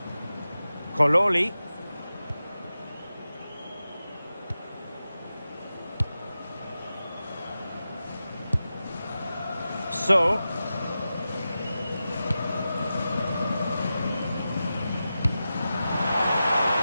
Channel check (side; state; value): both; inverted; correlation -0.92